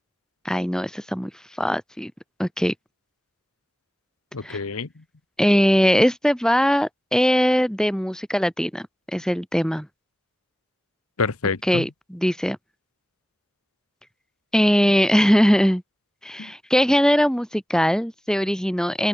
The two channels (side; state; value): both; normal; correlation 0.94